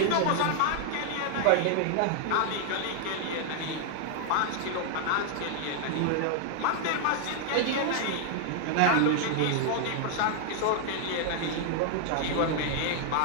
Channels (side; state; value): both; different; correlation 0.00